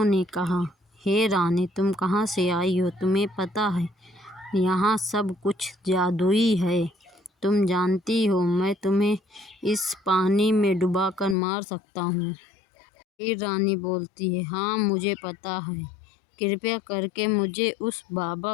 कहा, हे रानी, तुम कहाँ से आई हो? तुम्हें पता है यहाँ सब कुछ जादुई है। तुम जानती हो मैं तुम्हें इस पानी में डुबाकर मार सकता हूँ। फिर रानी बोलती है, हाँ मुझे पता है। कृपया करके मुझे उस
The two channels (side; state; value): right; drops out; at 11.4 s